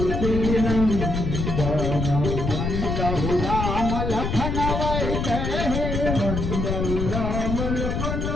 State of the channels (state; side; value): noise; left; rumble, 2 dB below the sound